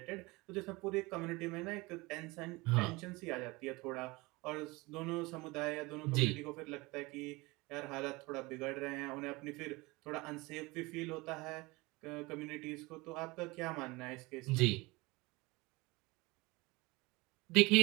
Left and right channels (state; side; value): quieter; left; 23.3 dB